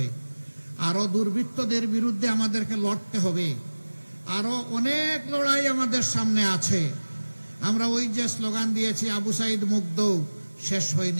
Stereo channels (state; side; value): inverted; both; correlation -1.00